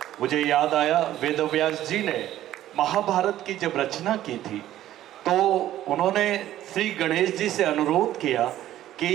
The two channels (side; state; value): left; quieter; 13.1 dB